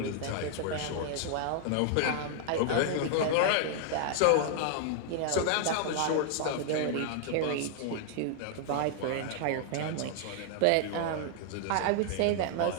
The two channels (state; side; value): different; both; correlation 0.00